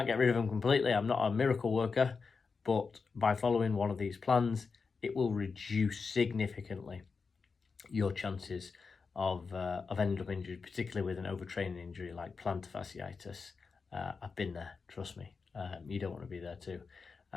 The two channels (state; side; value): quieter; right; 4.9 dB